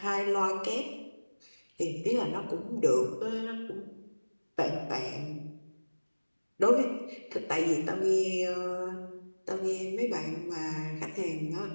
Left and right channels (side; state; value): both; inverted; correlation -1.00